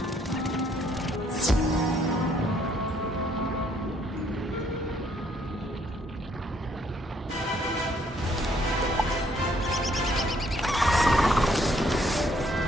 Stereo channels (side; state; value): both; normal; correlation 0.67